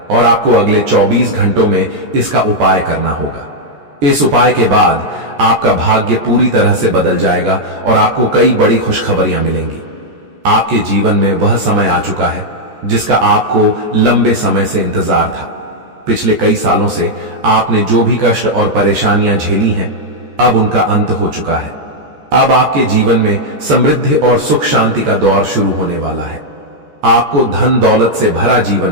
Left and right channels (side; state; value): left; late; 14 ms